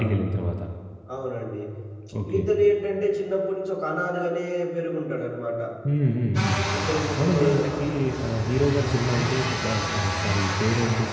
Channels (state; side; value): identical; both; correlation 1.00